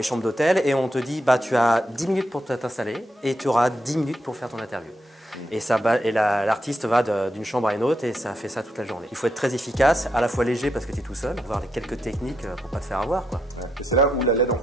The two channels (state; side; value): normal; both; correlation 0.81